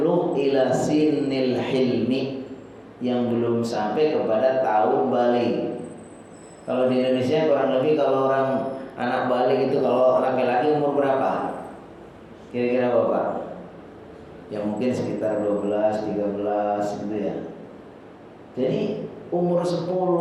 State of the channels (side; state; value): both; identical; correlation 1.00